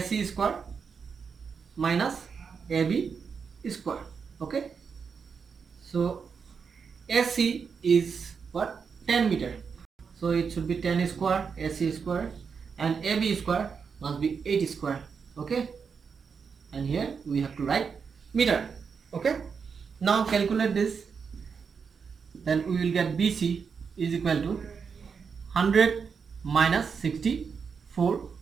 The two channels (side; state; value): left; quieter; 6.0 dB